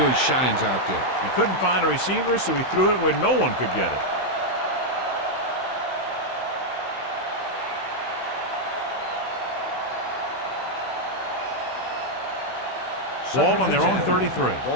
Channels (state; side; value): late; right; 16 ms